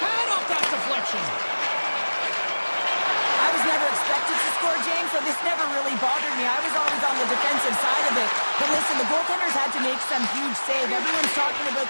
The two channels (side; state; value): both; inverted; correlation -1.00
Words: off that deflection. I was never expected to score, James, so this never really bothered me. I was always on the defensive side of it. But listen, the goaltenders had to make some huge save. Everyone's talking about